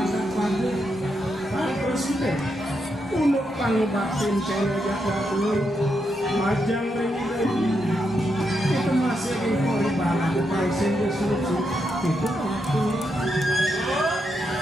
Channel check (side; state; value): both; normal; correlation 0.82